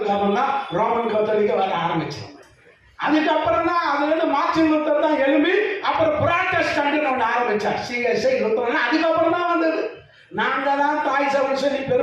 அப்புறம் தான் ரோமன் கத்தோலிக்க வர ஆரம்பிச்சது. அதுக்கப்புறம் தான் அதுல இருந்து மார்ட்டின் லூத்தர் தான் எழும்பி அப்புறம் புராட்டஸ்டன்ட் ஒன்று ஆரம்பிச்சார், சிஎஸ்ஐ லூத்தர். அதுக்கப்புறம் தான் வந்தது. நாங்க தான் தாய் சபை சொல்லி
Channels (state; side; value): identical; both; correlation 1.00